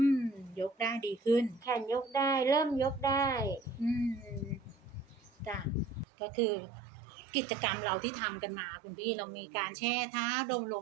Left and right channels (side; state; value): left; drops out; at 6.1 s